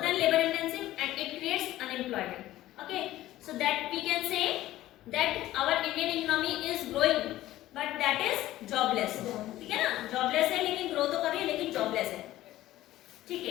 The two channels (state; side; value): quieter; right; 15.1 dB